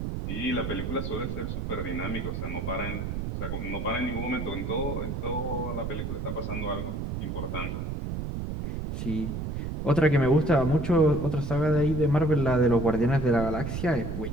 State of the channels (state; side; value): noise; right; rumble, 4 dB below the sound